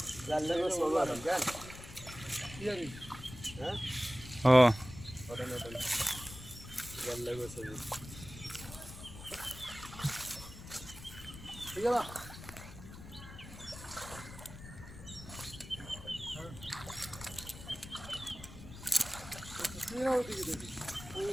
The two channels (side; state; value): left; noise; rumble, 14 dB below the sound